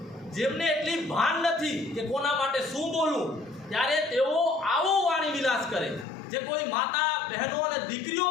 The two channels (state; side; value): drops out; right; at 6.1 s